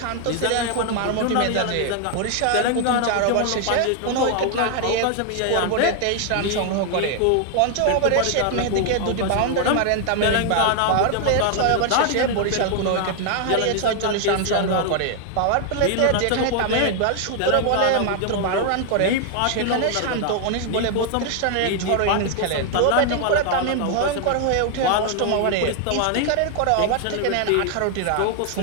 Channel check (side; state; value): both; different; correlation 0.00